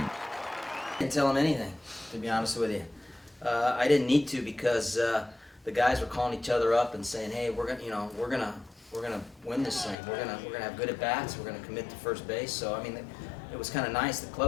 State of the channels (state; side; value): drops out; right; at 10.0 s